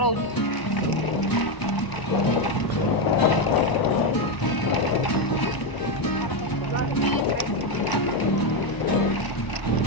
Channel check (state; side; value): late; right; 1.0 ms